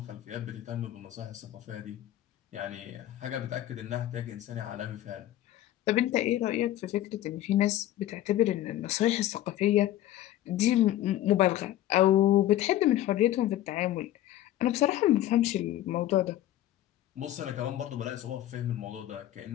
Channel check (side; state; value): right; quieter; 13.6 dB